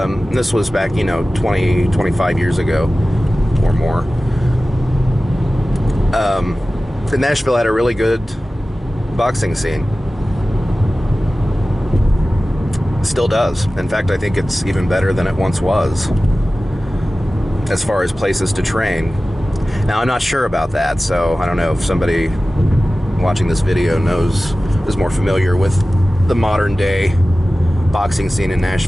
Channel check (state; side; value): normal; both; correlation 0.96